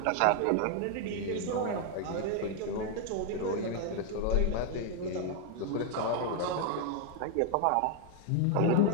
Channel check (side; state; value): both; different; correlation 0.00